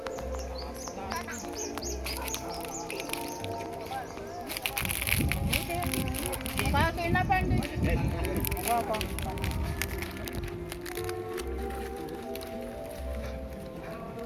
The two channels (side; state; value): both; identical; correlation 1.00